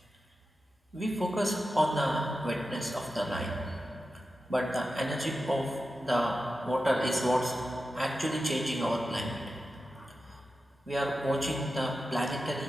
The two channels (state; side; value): normal; both; correlation 0.91